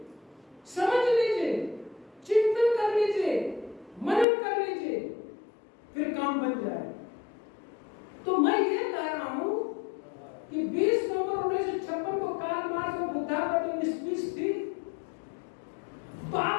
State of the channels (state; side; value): drops out; right; at 4.2 s